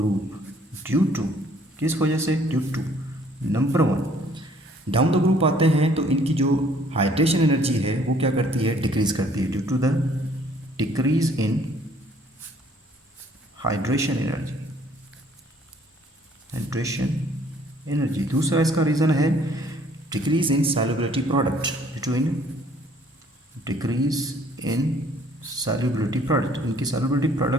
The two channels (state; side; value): normal; both; correlation 0.60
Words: due to, किस वजह से, due to number one, down the group आते हैं तो इनकी जो हाइड्रेशन एनर्जी है वो क्या करती है, डिक्रीज करती है, due to the decrease in hydration energy. दूसरा इसका रीज़न है decrease in solubility product, due to in decrease in solubility product, इनकी सॉल्युबिलिटी